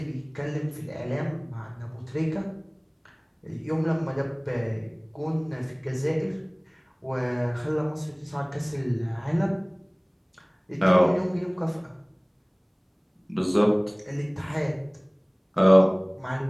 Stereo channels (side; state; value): both; identical; correlation 1.00